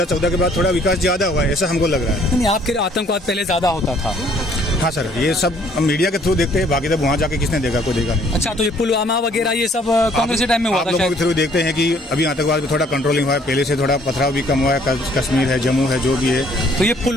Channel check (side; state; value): both; normal; correlation 0.61